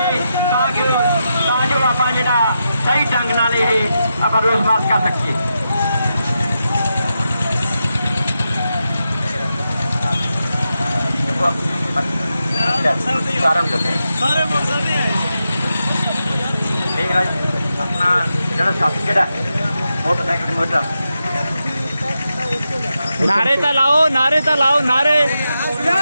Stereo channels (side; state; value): both; inverted; correlation -0.87